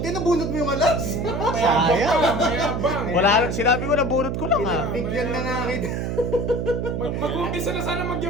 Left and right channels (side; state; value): right; noise; hum, 2 dB below the sound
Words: na bunot mo yung alas. Sayang. Mayabang. Wala, sinabi ko nabunot ko lang ah. Pinagbigyan na nga kita. Mag-umpisa na sana